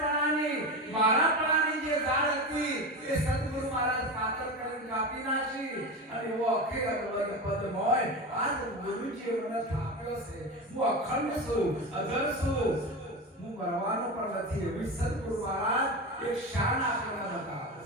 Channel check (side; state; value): both; normal; correlation 0.22